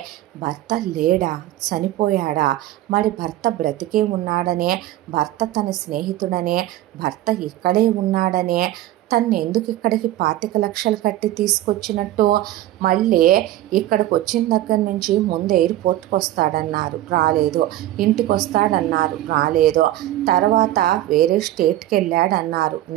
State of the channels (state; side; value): quieter; left; 14.5 dB